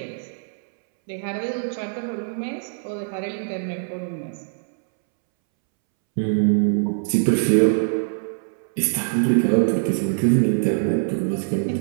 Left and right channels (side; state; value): left; silent; 63 dB below the other